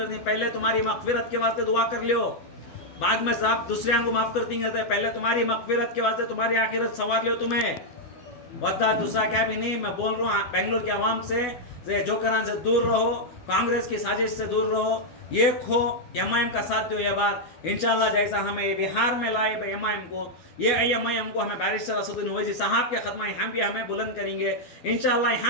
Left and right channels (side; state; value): right; late; 12 ms